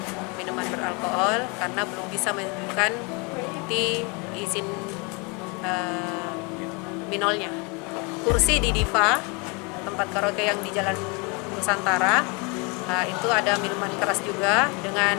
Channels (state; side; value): quieter; right; 30.9 dB